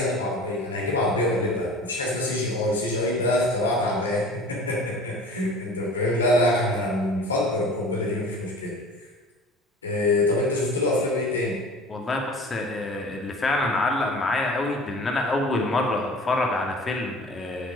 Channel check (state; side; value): normal; both; correlation 0.42